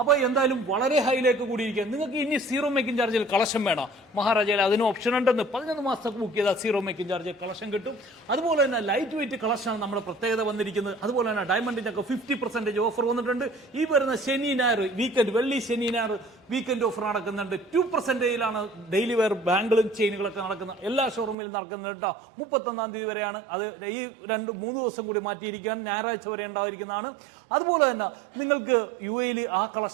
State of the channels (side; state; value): left; drops out; at 21.4 s